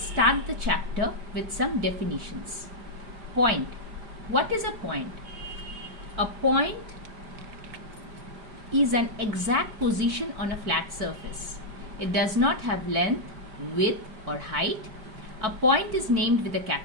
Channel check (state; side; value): late; left; 4.5 ms